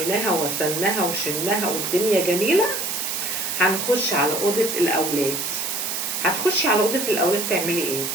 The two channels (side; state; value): right; noise; hiss, 2 dB below the sound